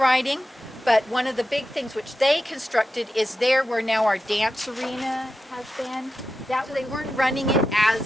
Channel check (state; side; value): normal; both; correlation 0.91